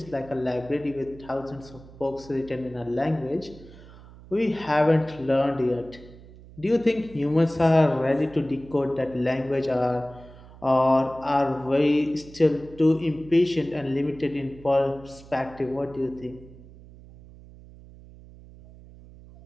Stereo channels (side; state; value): right; noise; hum, 20 dB below the sound